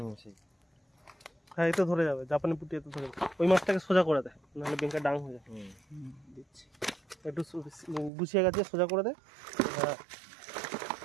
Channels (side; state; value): left; drops out; at 8.1 s